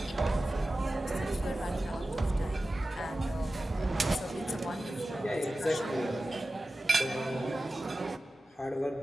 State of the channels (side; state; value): both; normal; correlation 0.95